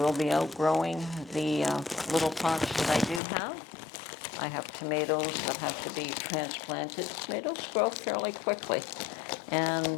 be outgrowing the little pots that I do have. I have tomatoes that have to be transplanted. Tomatoes grow fairly quickly.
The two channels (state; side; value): drops out; right; at 3.2 s